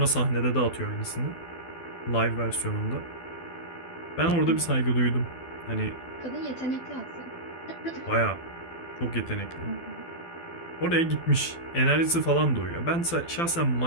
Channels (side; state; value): right; late; 12 ms